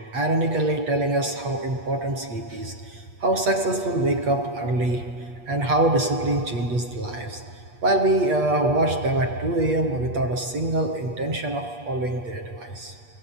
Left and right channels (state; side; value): late; left; 8.4 ms